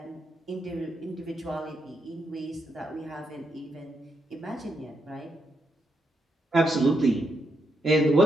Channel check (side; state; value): both; normal; correlation 0.80